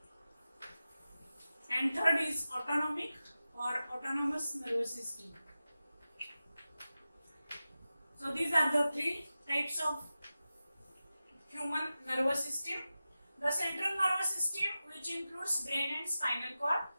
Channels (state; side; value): inverted; both; correlation -0.94